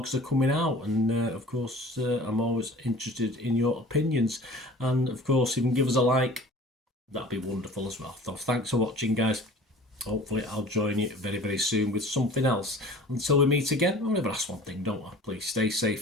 are coming out. And of course I'm always interested in your opinions, and of course you can give us a like, that'd be wonderful as well. So thanks for watching, guys. Hopefully I'll join you very, very soon with something else. Until we meet again, I'll never ask one thing, don't I? Please stay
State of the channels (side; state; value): both; normal; correlation 0.44